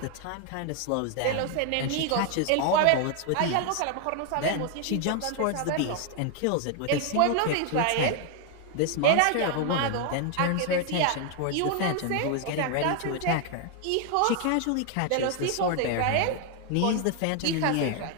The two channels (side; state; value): both; different; correlation 0.00